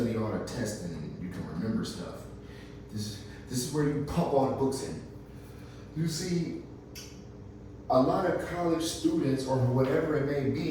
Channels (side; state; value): both; identical; correlation 1.00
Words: all the tests and you can remember stuff. This is where you pump all the books in. You see, a lot of college students, or whatever it may